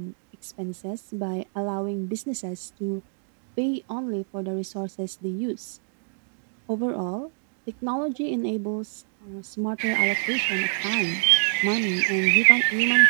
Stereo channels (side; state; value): left; silent; digital silence